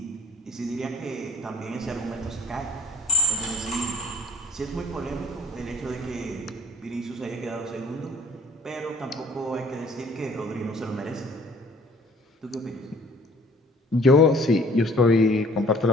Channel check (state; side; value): normal; both; correlation 0.53